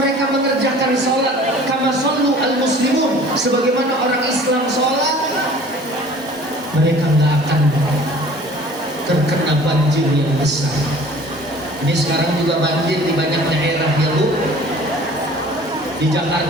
mengerjakan sholat kama shollu al muslimun, sebagaimana orang Islam sholat, mereka nggak akan terkena banjir yang besar. Ini sekarang juga banjir di banyak daerah ya Bu. Di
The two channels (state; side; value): normal; both; correlation 0.48